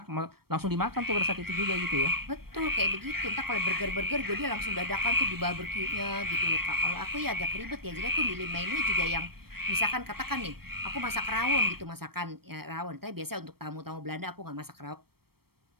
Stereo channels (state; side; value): late; left; 0.95 ms